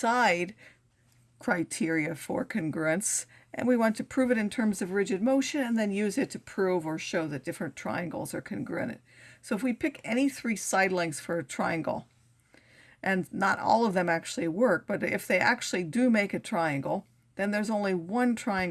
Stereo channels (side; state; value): both; identical; correlation 1.00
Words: criteria for congruence, and we want to prove it in terms of rigid motion and then use it to prove or show that different triangles are congruent. So if we pick any three side lengths for a triangle, and not all of them actually work, but if they actually do make a triangle, then there's only one